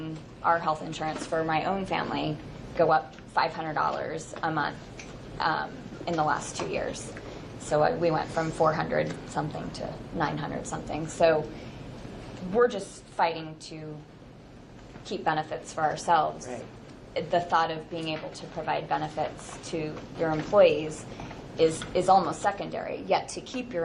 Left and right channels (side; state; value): both; identical; correlation 1.00